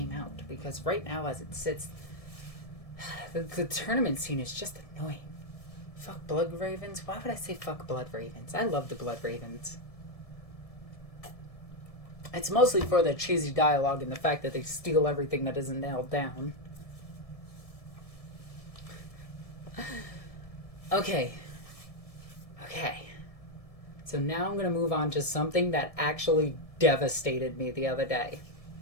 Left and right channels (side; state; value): right; late; 1.7 ms